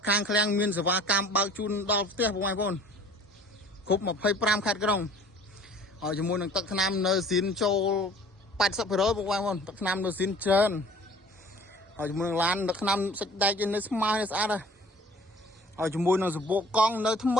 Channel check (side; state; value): both; normal; correlation 0.49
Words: ខាងឃ្លាំងមានសេវាកម្មបើកជូនដល់ផ្ទះពុកម៉ែបងប្អូនគ្រប់25ខេត្តក្រុងហើយជាមួយនឹងទឹកថ្នាំនៅស៊ីនចូល 80% ពុកម៉ែបងប្អូនទឹកថ្នាំនៅស៊ីនច្រើនហើយជាមួយនឹងឡានទឹកថ្នាំសាច់ដែកនៅស្មើស្អាតហើយជាមួយនឹងសបកកង់នៅថ្ម